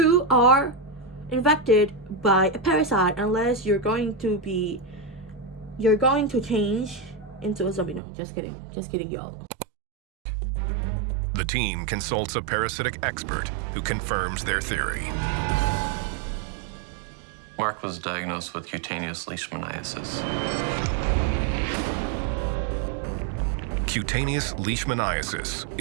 are infected by a parasite, unless you're going to change into a zombie. No, just kidding, y'all. The team consults a parasitic expert who confirms their theory. Mark was diagnosed with cutaneous leishmaniasis. Cutaneous leishmaniasis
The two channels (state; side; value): drops out; left; at 8.0 s